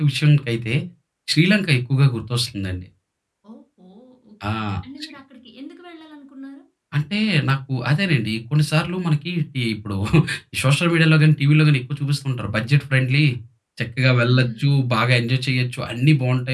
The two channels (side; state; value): both; identical; correlation 1.00